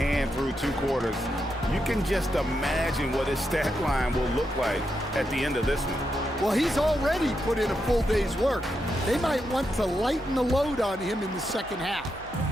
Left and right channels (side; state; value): both; normal; correlation 0.84